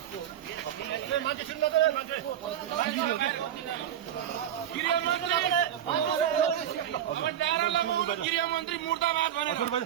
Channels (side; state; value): left; quieter; 10.5 dB